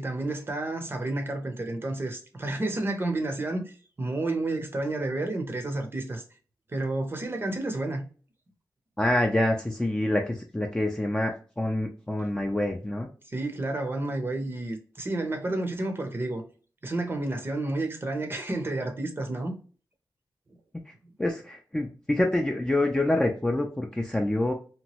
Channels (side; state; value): both; normal; correlation 0.89